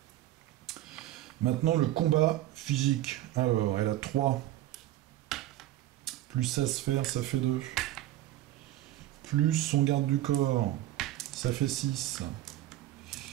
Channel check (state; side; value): quieter; left; 14.5 dB